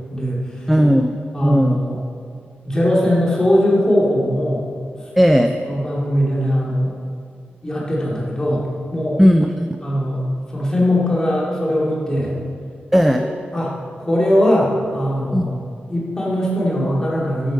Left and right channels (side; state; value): both; normal; correlation 0.94